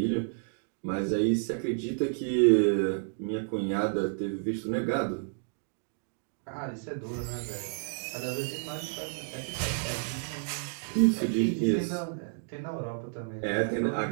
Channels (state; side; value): silent; left; digital silence